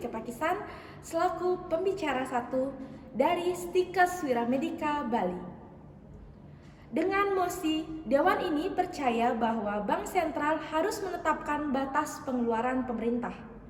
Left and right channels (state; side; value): identical; both; correlation 1.00